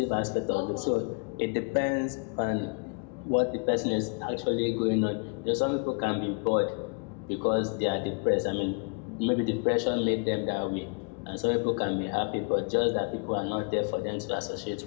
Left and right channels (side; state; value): right; quieter; 35.1 dB